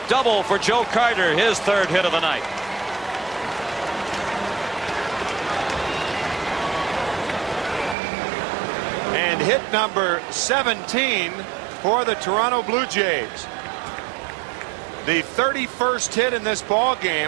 double for Joe Carter, his 3rd hit of the night. And hit number 17 for the Toronto Blue Jays. The 31st hit in this ball game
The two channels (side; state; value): left; drops out; at 8.0 s